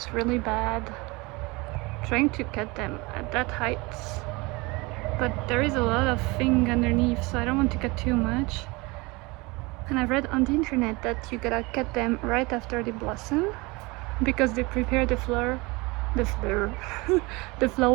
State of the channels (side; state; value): left; quieter; 24.7 dB